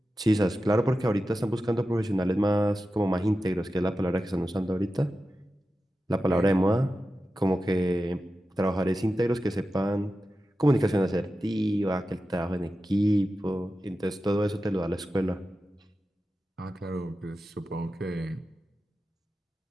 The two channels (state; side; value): normal; both; correlation 0.92